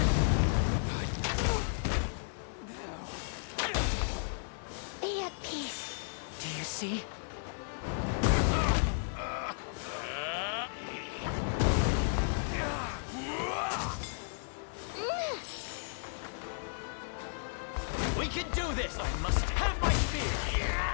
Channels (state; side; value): silent; right; digital silence